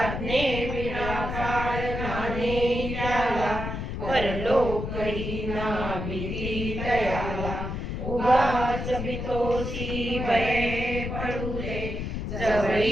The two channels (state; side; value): noise; left; rumble, 4 dB below the sound